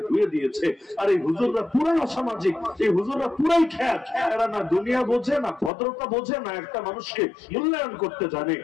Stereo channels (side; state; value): right; drops out; at 5.7 s